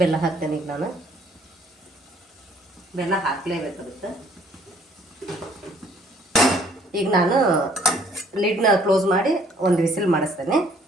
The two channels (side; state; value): both; normal; correlation 0.60